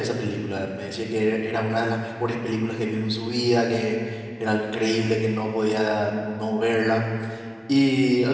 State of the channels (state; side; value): identical; both; correlation 1.00